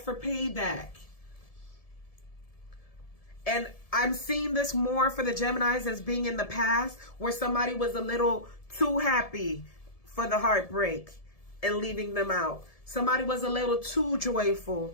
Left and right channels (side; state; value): right; late; 1.7 ms